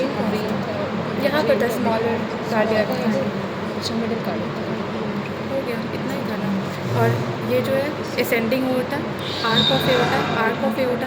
यहाँ पर था स्मॉलर कार्डियक मिडिल कार्डियक हो गया, इतना ही था ना। और ये जो है असेंडिंग होता arc of aorta, arc of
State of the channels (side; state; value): both; identical; correlation 1.00